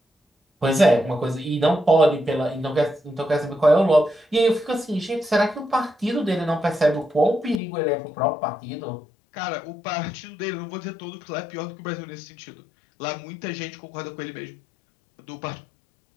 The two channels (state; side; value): drops out; right; at 7.6 s